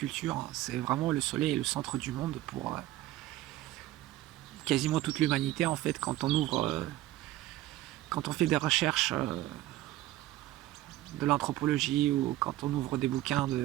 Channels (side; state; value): left; quieter; 15.4 dB